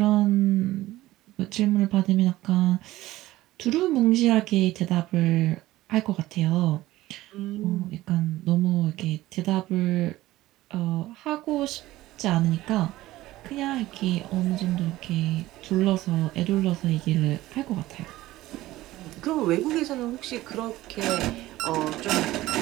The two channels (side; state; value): left; quieter; 16.6 dB